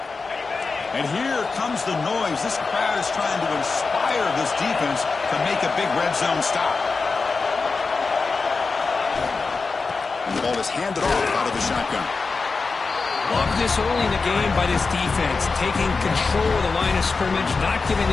And here comes the noise. This crowd is trying to inspire this defense to make a big red zone stop. And the ball is handed off out of the shotgun. Love this early in the game by this defense, taking control of the line of scrimmage, not giving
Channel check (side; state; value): right; quieter; 4.4 dB